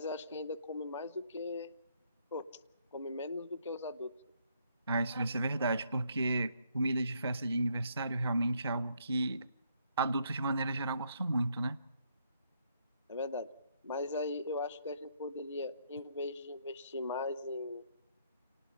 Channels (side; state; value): both; inverted; correlation -0.71